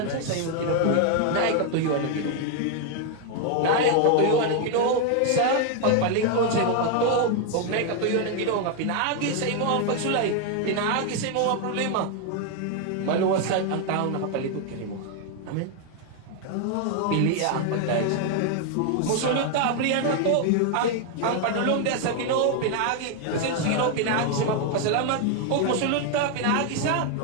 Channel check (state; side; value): different; both; correlation 0.00